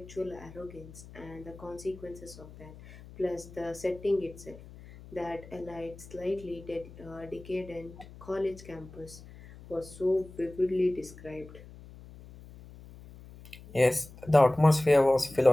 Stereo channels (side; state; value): left; noise; hum, 18 dB below the sound